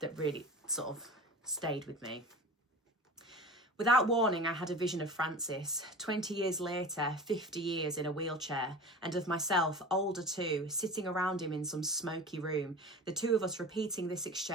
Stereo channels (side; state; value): both; normal; correlation 0.35